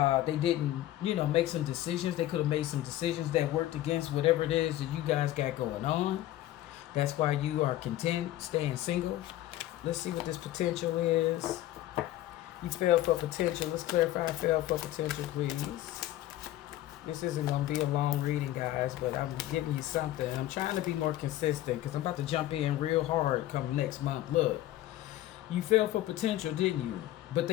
They didn't, make some decisions. They could have made some decisions that worked against whatever it is that you guys got going on. That's why you are content staying single. Let's see what this potential is. You fell for potential. Let's clarify fell for potential, please. This isn't going to be a long reading, guys, but I'm giving you something. I'm trying to be more consistent because I'm about to jump in real hard come next month. Look, you fell for potential, didn't you? But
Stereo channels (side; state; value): right; quieter; 14.4 dB